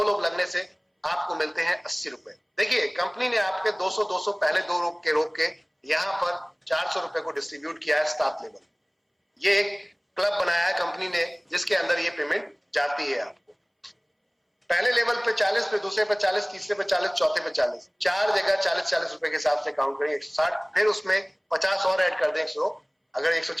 लोग लगने से आपको मिलते हैं 80 रुपए। देखिए कंपनी ने आपके 200 पहले 2 रोक के यहाँ पर 400 रुपए को डिस्ट्रीब्यूट किया है स्टाफ लेवल। ये एक क्लब बनाया है कंपनी ने जिसके अंदर ये पेमेंट जाती है आपको। पहले लेवल पे 40, पे दूसरे पे 40, तीसरे पे 40, चौथे पे 40, 4 जगह 40 रुपए के हिसाब से काउंट करें 160, फिर उसमें 50 और ऐड कर दें 100। अगर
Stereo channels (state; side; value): identical; both; correlation 1.00